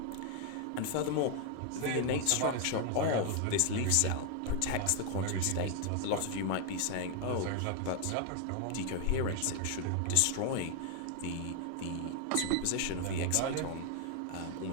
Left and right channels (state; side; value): different; both; correlation 0.00